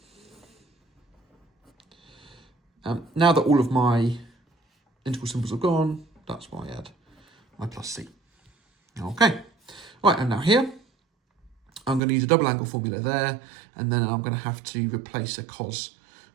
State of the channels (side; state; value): left; drops out; at 12.0 s